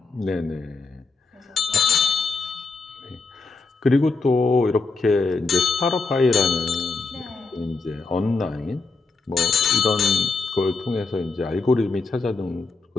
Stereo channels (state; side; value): quieter; right; 3.9 dB